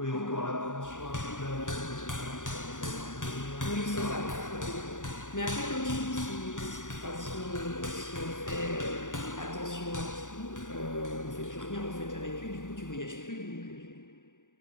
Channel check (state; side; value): late; right; 0.87 ms